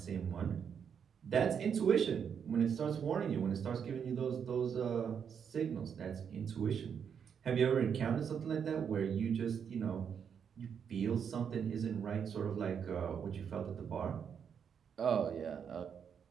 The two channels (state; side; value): quieter; left; 7.4 dB